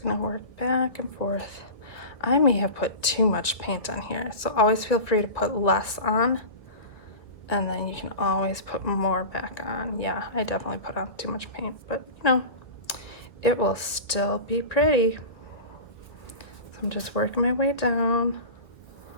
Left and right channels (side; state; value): right; late; 1.6 ms